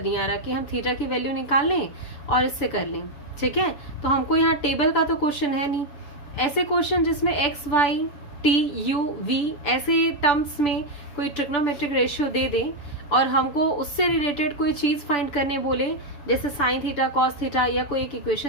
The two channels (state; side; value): late; right; 6.9 ms